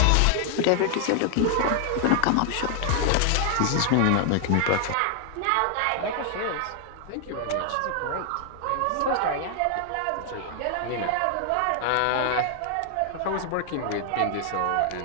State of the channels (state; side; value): different; both; correlation 0.00